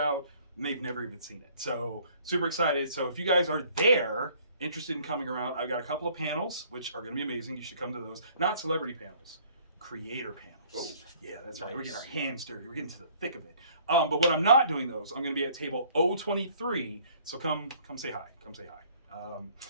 and they've never even seen it. So, super excited. So, if you guys are there, interested in coming around, I've got a couple of panels, which are going to be amazing. You should come to those. Not celebrity panels. Creator panels. Oh, yeah, that's right. We're getting our hands dirty. We're getting to the thick of it. But when I'm not doing those, I'm going to be at table 023. So come say hi. Come say hi.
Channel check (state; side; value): inverted; both; correlation -0.57